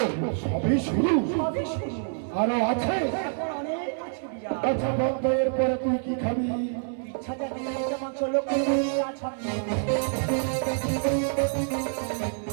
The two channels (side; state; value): left; silent; 60 dB below the other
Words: সবই শুরু? সবই শুরু, আরো আছে? এখন অনেক আছে বিরাট। আচ্ছা বন্ধ, এরপরে তুই কি খাবি? ইচ্ছা যাবে মাংস লক্ষ্য